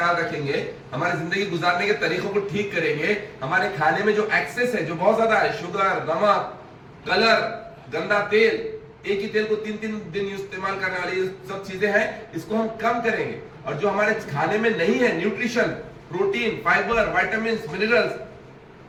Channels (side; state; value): both; identical; correlation 1.00